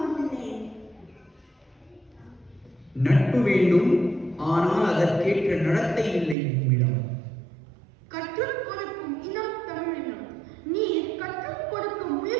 நட்பு வேண்டும், ஆனால் அதற்கேற்ற நடத்தை இல்லை நம்மிடம். கற்றுக் கொடுக்கும் இனம் தமிழினம். நீ கற்றுக் கொடுக்க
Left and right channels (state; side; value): drops out; left; at 6.4 s